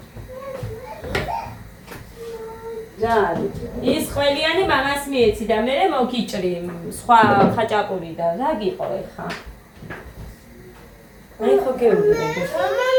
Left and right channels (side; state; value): both; identical; correlation 1.00